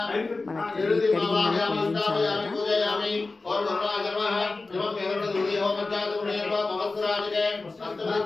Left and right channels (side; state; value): right; quieter; 3.6 dB